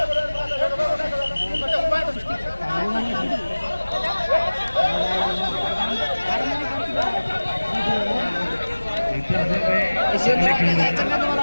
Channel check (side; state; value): both; inverted; correlation -1.00